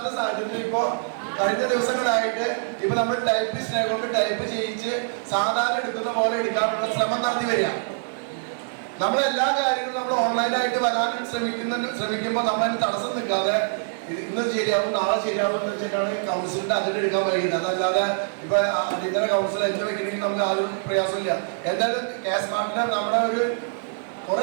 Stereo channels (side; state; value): left; silent; 56 dB below the other